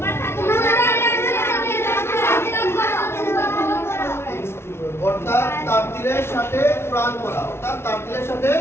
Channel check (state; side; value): late; right; 0.12 ms